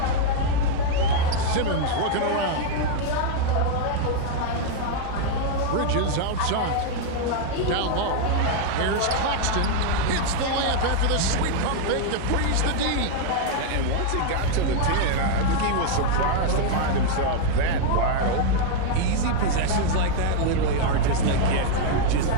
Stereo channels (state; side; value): different; both; correlation 0.00